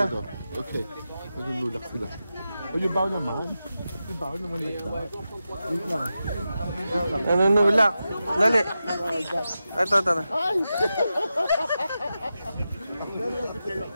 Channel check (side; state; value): both; inverted; correlation -0.91